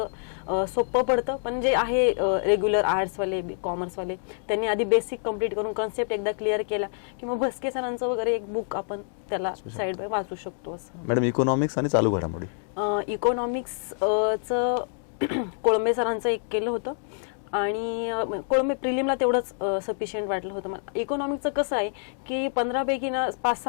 सोपं पडतं, पण जे आहे रेग्युलर आर्ट्सवाले, कॉमर्सवाले, त्यांनी आधी बेसिक कंप्लीट करून कन्सेप्ट एकदा क्लिअर केला की मग भस्के सरांचं वगैरे एक बुक आपण त्याला साईड बाय वाचू शकतो. असं मॅडम, इकॉनॉमिक्स आणि चालू घडामोडी. इकॉनॉमिक्सचं कोळंबे सरांचं एक केलं होतं, आणि कोळंबे प्रिलिमला तेवढंच सफिशियंट वाटलं होतं मला. इकॉनॉमिक्सचं कसं आहे की 15 पैकी ना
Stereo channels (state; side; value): silent; right; digital silence